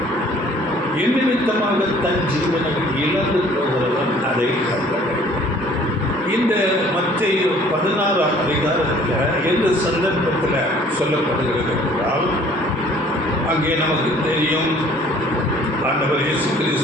என் நிமித்தமாக தன் ஜீவனை இழந்து போகிறவன் அதை கண்டறிவான். இந்த மத்தேயு 16 எந்த சந்தர்ப்பத்தில் சொல்லப்படுகிறது என்றால், அங்கே நமக்கு தெரியும், ஆண்டவர் இயேசு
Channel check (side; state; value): both; normal; correlation 0.54